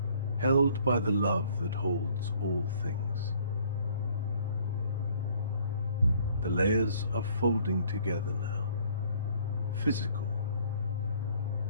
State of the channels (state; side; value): inverted; both; correlation -0.58